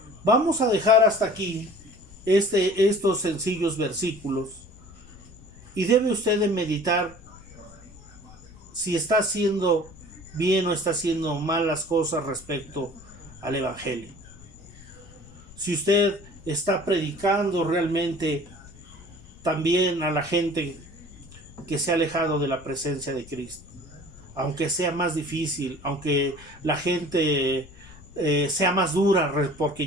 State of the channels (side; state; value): left; noise; rumble, 21 dB below the sound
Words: Vamos a dejar hasta aquí estos sencillos versículos, y debe usted de meditar si está haciendo bien o está haciendo mal las cosas respecto al Evangelio. Si usted está predicando realmente también a la gente que se ha alejado de la presencia de Cristo, aunque sea más difícil, aunque la gente sea más dura